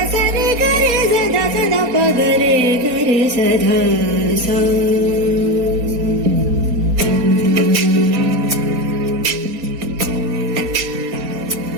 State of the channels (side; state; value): left; late; 4.0 ms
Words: సరి గరి సదా సదా ప గరి గరి సధా సా